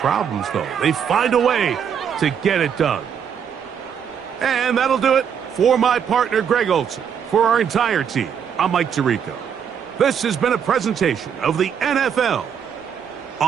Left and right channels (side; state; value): left; quieter; 7.8 dB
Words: though. They find a way to get it done. And that'll do it for my partner, Greg Olson. For our entire team, I'm Mike Tirico. This has been a presentation of the NFL